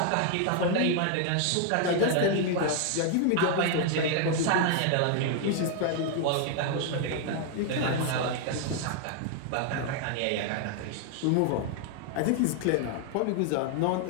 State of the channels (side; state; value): both; different; correlation 0.00